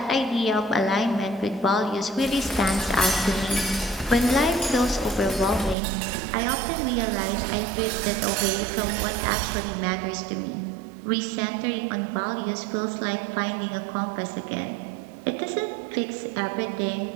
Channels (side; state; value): left; drops out; at 5.8 s